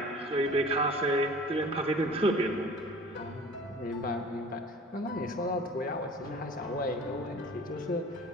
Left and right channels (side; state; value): both; normal; correlation 0.44